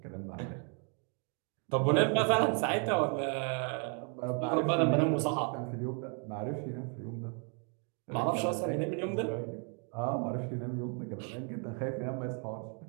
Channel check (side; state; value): left; quieter; 39.7 dB